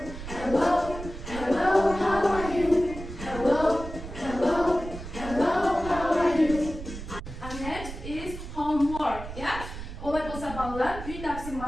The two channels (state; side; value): noise; right; rumble, 10 dB below the sound